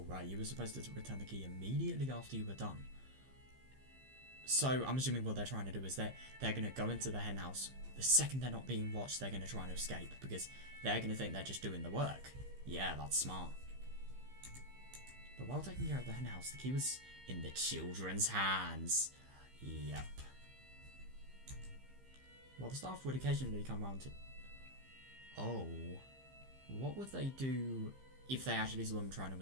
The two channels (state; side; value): late; left; 15 ms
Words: Right, you were supposed to return the key immediately after you were done. So I'm assuming what they're trying to do is they're going to go into the hen house. The second they're not being watched, they're going to try and escape because they're going to think they're just doing the work. Yeah, that's smart. But while taking care of the hen house, the key was in the children's hands. Yep. While the staff would occasionally come around to... Oh. What would they do if they actually saw them trying to